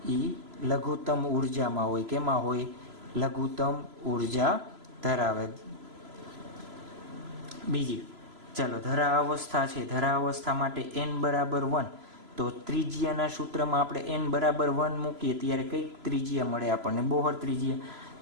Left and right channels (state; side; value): late; left; 3.0 ms